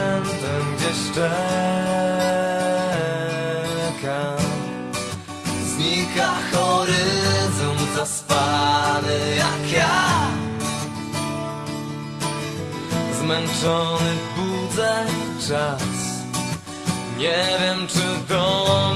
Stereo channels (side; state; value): both; identical; correlation 1.00